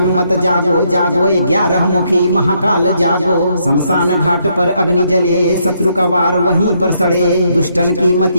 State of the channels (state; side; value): inverted; both; correlation -0.74